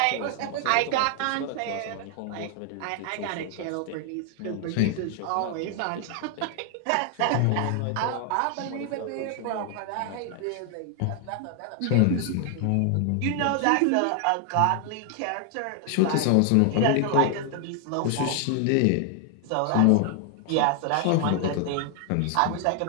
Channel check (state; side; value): different; both; correlation 0.00